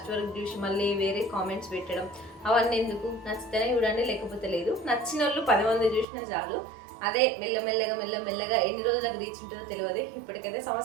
వరకు చూసి మళ్ళీ వేరే కామెంట్స్ పెట్టడం అవన్నీ ఎందుకు? నచ్చితేనే చూడండి, లేకపోతే లేదు. నచ్చిన వాళ్ళు 10 మంది చూసినా చాలు. అదే మెల్లమెల్లగా ఎన్ని రోజులకు రీచ్ ఉంటుందో తెలియదు. ఇప్పటికైతే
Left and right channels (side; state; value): left; drops out; at 6.1 s